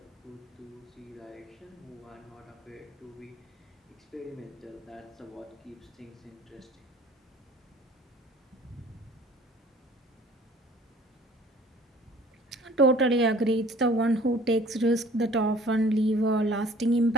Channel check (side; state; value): both; normal; correlation 0.52